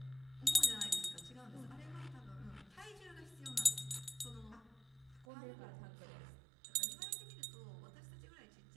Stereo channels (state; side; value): drops out; left; at 5.2 s